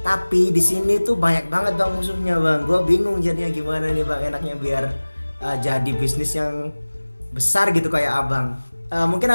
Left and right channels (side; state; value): both; inverted; correlation -1.00